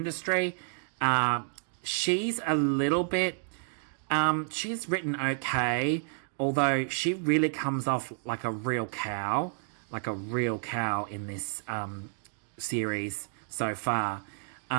She's a little bit... she's written okay, although she really comes off like a real cow in this series so far.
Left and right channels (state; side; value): silent; left; 58 dB below the other